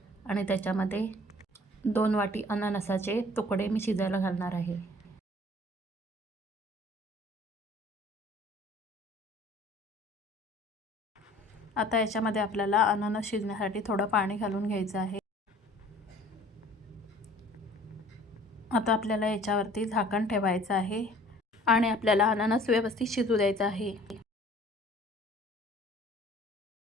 आणि त्याच्यामध्ये 2 वाटी अननसाचे तुकडे मी शिजायला घालणार आहे. आता याच्यामध्ये आपल्याला अननस शिजण्यासाठी थोडं पाणी घालून घ्यायचं आहे. आता आपल्याला याच्यावरती झाकण ठेवायचं आहे आणि आपल्याला अननस व्यवस्थित शिजू द्यायचा आहे.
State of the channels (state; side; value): normal; both; correlation 0.51